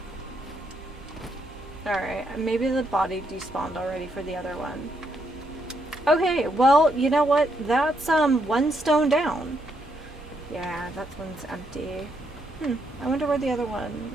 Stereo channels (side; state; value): both; normal; correlation 0.76